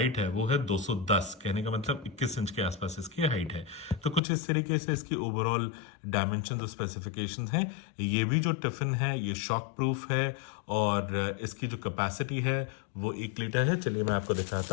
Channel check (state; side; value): drops out; right; at 4.2 s